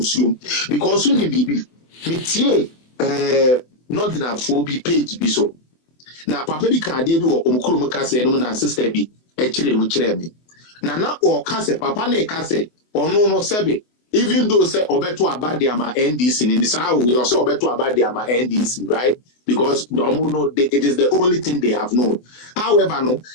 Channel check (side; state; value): right; late; 24 ms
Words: Because soon bibi mitie northern phobia page biso. Na papa bi kan de bi wo omukuru mu kase no na sister bi e kire mu kire me. Na o kase papa na e kase ono no sebe even though say obeto abade ama NDC in this how we also obeto abade ama NDC, right? Because no, it is the only thing they have known. However, no,